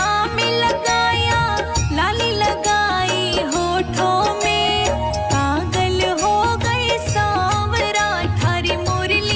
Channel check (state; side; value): identical; both; correlation 1.00